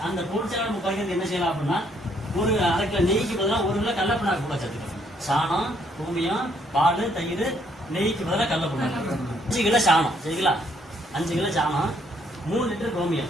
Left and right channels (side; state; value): both; normal; correlation 0.69